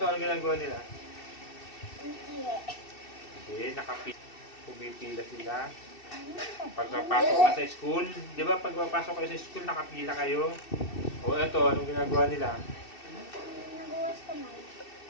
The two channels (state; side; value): late; right; 2.7 ms